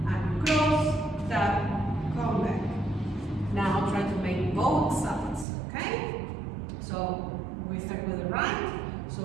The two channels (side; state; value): left; drops out; at 5.5 s